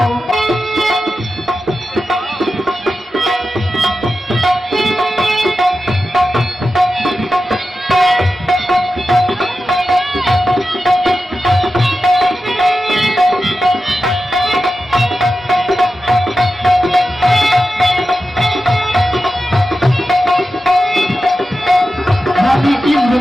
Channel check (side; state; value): both; normal; correlation 0.92